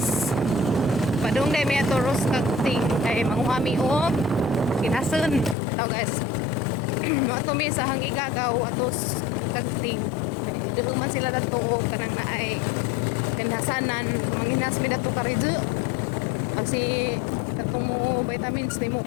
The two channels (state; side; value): drops out; right; at 5.6 s